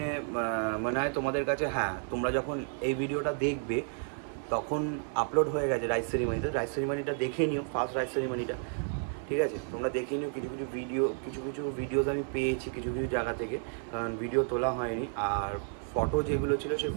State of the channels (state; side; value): silent; left; 56 dB below the other